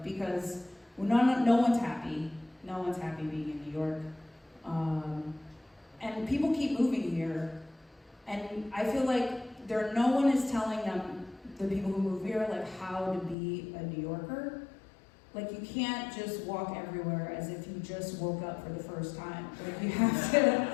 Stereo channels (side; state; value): right; drops out; at 13.4 s